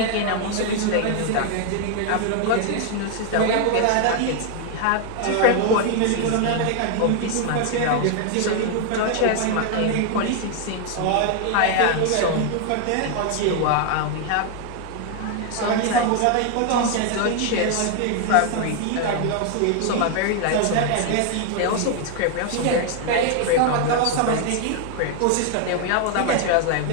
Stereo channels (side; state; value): both; different; correlation 0.00